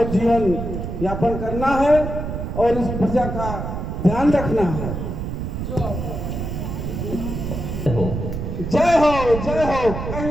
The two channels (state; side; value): noise; right; rumble, 5 dB below the sound